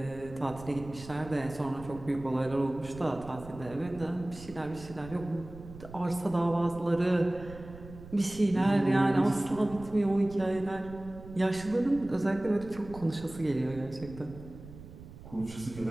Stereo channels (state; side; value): noise; right; rumble, 16 dB below the sound